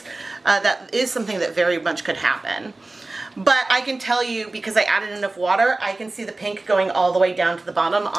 That is something that very much could happen. But I can tell you, because I added enough water, I can see the pink going all the way down to the bottom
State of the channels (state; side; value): quieter; left; 3.1 dB